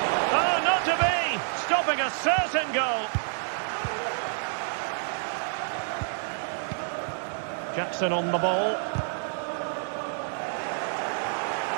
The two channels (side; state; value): left; silent; 59 dB below the other